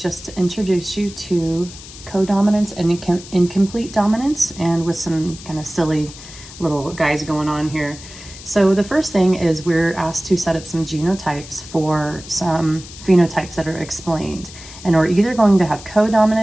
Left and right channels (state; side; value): noise; left; hiss, 16 dB below the sound